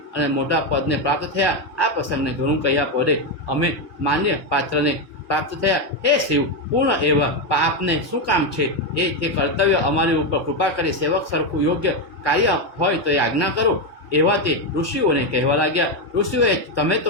અને મોટા પદને પ્રાપ્ત થયા. આ પ્રસંગને ઘણું કહ્યા પડે અમે માન્ય પાત્રને પ્રાપ્ત થયા. હે શિવ, પૂર્ણ એવા પાપને શું કામ છે એ તે કર્તવ્ય અમારી ઉપર કૃપા કરી સેવક સરખું યોગ્ય કાર્ય હોય તો એ આજ્ઞા કરો. એવા તે ઋષિઓને કહેવા લાગ્યા. ઋષિઓએ તમે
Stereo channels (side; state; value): left; late; 1.2 ms